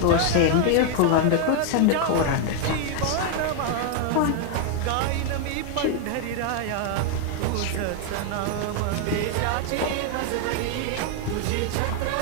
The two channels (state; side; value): different; both; correlation 0.00